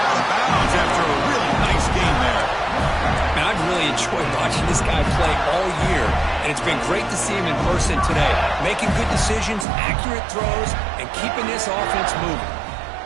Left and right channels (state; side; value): drops out; left; at 9.7 s